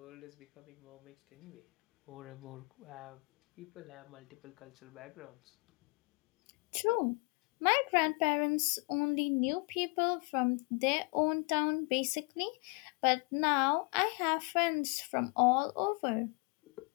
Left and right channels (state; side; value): quieter; right; 32.4 dB